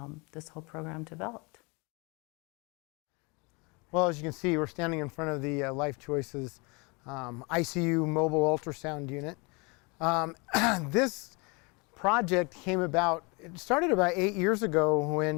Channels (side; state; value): right; quieter; 29.3 dB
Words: this whole program developed. Well, as you can see, we're standing in front of the Life Choices ICU mobile ultrasound unit. This project came about, it started about 8 years ago